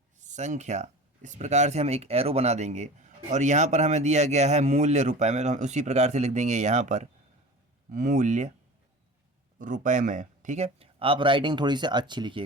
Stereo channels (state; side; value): normal; both; correlation 0.36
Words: संख्या, इस प्रकार से हम एक एरो बना देंगे और यहाँ पर हमें दिया गया है मूल्य रुपए में, तो हम उसी प्रकार से लिख देंगे यहाँ पर मूल्य रुपए में। ठीक है, आप राइटिंग थोड़ी सी अच्छी